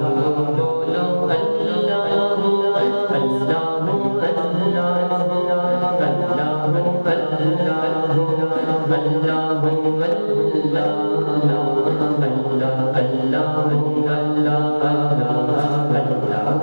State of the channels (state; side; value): inverted; both; correlation -1.00